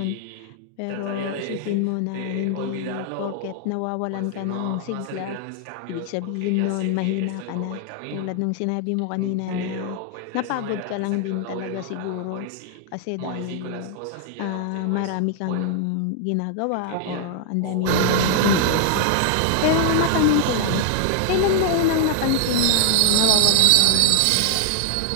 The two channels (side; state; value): both; different; correlation 0.00